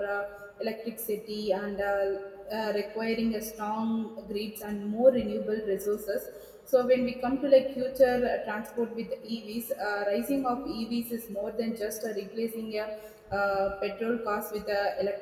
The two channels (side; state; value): both; identical; correlation 1.00